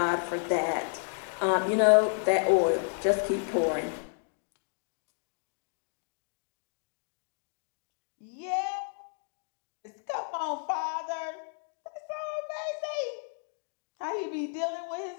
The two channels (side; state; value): right; silent; digital silence